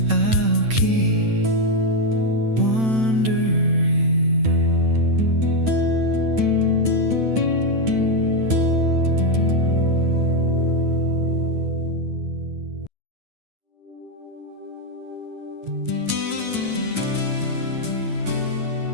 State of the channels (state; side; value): late; left; 9.0 ms